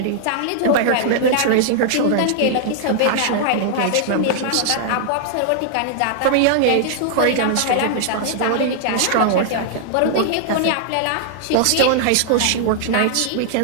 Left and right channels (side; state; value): both; different; correlation -0.01